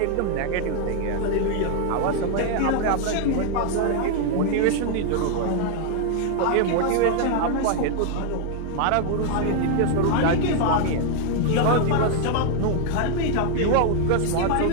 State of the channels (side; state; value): both; different; correlation 0.00